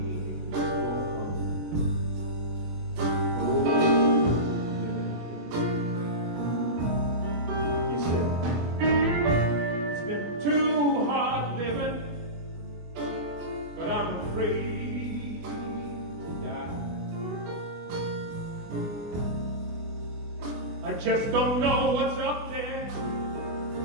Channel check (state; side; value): late; left; 24 ms